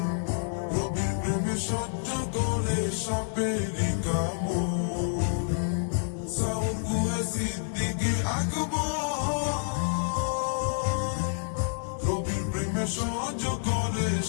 নবীর প্রেমে সহ্য করে সাপেরি কামড়। সাউর গুহে সিদ্দিকে আকবর, নবীর প্রেমে সহ্য করে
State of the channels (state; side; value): silent; right; 59 dB below the other